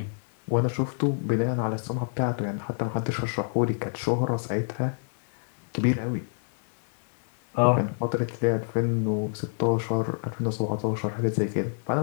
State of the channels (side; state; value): right; silent; 60 dB below the other